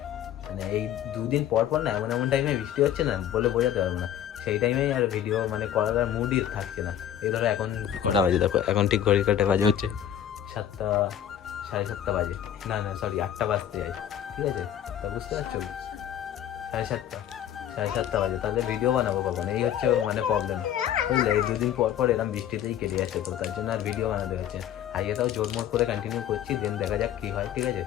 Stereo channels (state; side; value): quieter; right; 10.4 dB